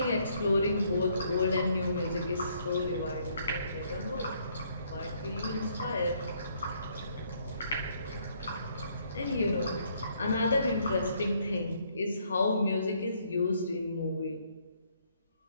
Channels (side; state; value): both; inverted; correlation -0.68